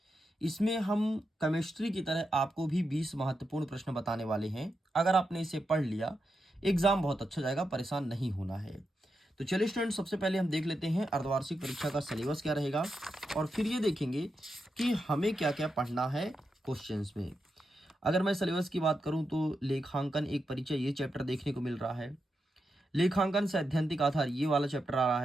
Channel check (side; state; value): both; normal; correlation 0.87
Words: इसमें हम केमिस्ट्री की तरह आपको भी 20 महत्वपूर्ण प्रश्न बताने वाले हैं। अगर आपने इसे पढ़ लिया, एग्ज़ाम बहुत अच्छा जाएगा, परेशान नहीं होना है। तो चलिए स्टूडेंट, सबसे पहले हम देख लेते हैं अर्धवार्षिक परीक्षा का सिलेबस क्या रहेगा और फिर ये देखेंगे कि हमें क्या क्या पढ़ना है क्वेश्चंस में। अगर मैं सिलेबस की बात करूं तो लेखांकन एक परिचय ये चैप्टर देखने को मिल रहा है। लेखांकन सैद्धांतिक आधार ये वाला चैप्टर आ रहा